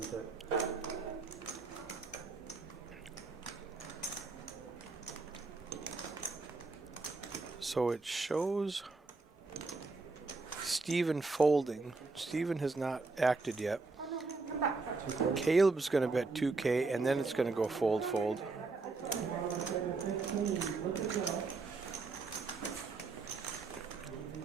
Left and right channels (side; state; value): left; quieter; 3.9 dB